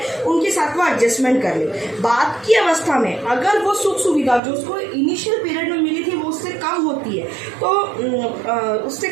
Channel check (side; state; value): left; drops out; at 4.4 s